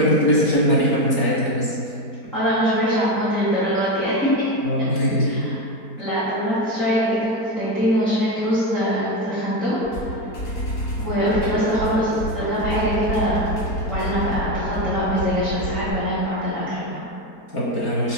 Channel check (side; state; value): right; late; 4.4 ms